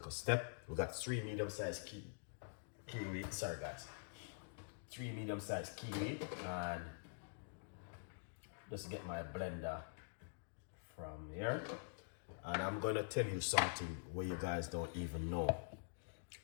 step. We got 3 medium-sized kiwi, sorry guys. 3 medium-sized kiwi, and just get my blender from here. And I'm gonna tell you something where you guys don't even know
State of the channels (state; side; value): silent; right; digital silence